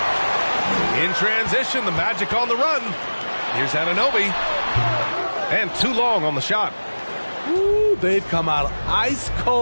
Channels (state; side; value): inverted; both; correlation -1.00